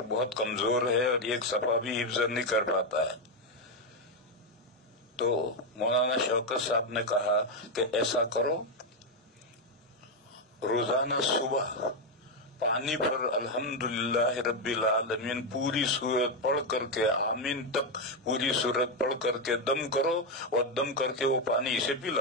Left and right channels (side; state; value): both; normal; correlation 0.05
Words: بہت کمزور ہے اور ایک صفحہ بھی حفظ نہیں کر پاتا ہے۔ تو مولانا شوکت صاحب نے کہا کہ ایسا کرو، روزانہ صبح پانی پر الحمدللہ رب العالمین پوری سورت پڑھ کر کے آمین تک پوری سورت پڑھ کر کے دم کرو، اور دم کر کے وہ پانی اسے